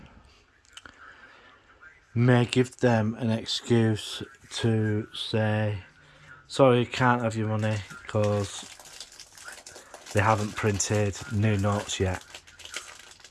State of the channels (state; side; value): identical; both; correlation 1.00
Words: may give them an excuse to say, sorry, you can't have your money because they haven't printed new notes yet.